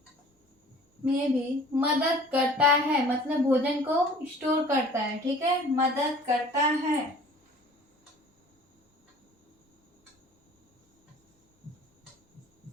भी मदद करता है, मतलब भोजन को स्टोर करता है, ठीक है, मदद करता है।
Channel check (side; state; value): both; normal; correlation 0.49